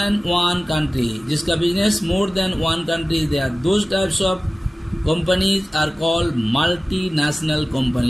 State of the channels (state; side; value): normal; both; correlation 0.97